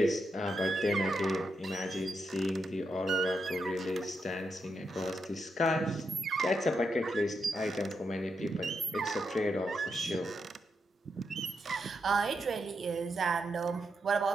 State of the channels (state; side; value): normal; both; correlation 0.83